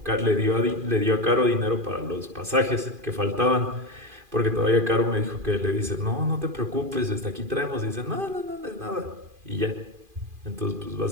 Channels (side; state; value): left; late; 2.4 ms